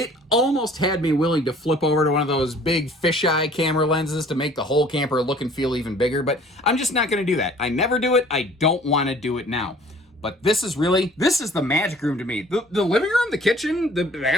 almost had me willing to flip over to one of those big fisheye camera lenses to make the whole camper look and feel even bigger, but I'm just not going to do that. I never do it. I don't want to do it now. But this is the magic room to me. The living room, the kitchen, the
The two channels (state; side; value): normal; both; correlation 0.52